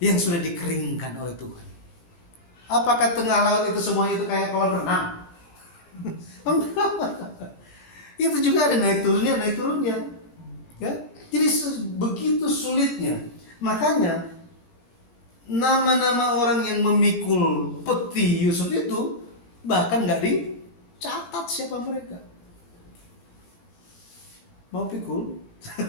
yang sudah dikeringkan oleh Tuhan. Apakah tengah laut itu semuanya itu kayak kolam renang? Itu juga ada naik turunnya. Ya? Jadi begitu sulitnya. Makanya nama-nama orang yang memikul peti Yusuf itu bahkan nggak dicatat siapa mereka. Mau pikul?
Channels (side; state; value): right; late; 18 ms